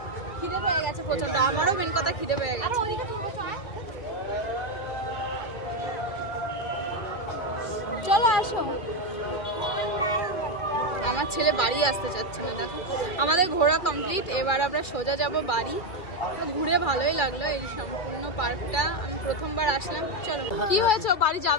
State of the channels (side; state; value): right; late; 2.3 ms